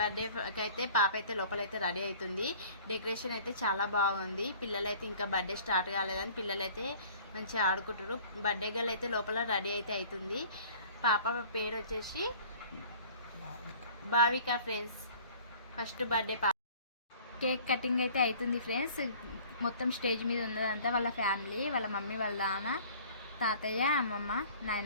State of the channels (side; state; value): both; inverted; correlation -0.49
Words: అయితే పాప అయితే లోపలైతే రెడీ అవుతుంది. డెకరేషన్ అయితే చాలా బాగుంది. పిల్లలైతే ఇంకా బర్త్డే స్టార్ట్ కాలేదని పిల్లలైతే మంచిగా ఆడుకుంటారు. బర్త్డే గర్ల్ అయితే లోపల రెడీ అయితే అవుతుంది. పాప పేరు వచ్చేసి భావిక. ఫ్రెండ్స్, ఫస్ట్ బర్త్డే పాప. కేక్ కటింగ్ అయితే అవుతుంది ఫ్రెండ్స్. మొత్తం స్టేజ్ మీద ఉన్నదంతా వాళ్ళ ఫ్యామిలీ, వాళ్ళ మమ్మీ, వాళ్ళ నాన్న, తాతయ్య, అమ్మమ్మ,